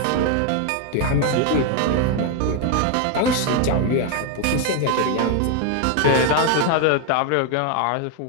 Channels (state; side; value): different; both; correlation 0.01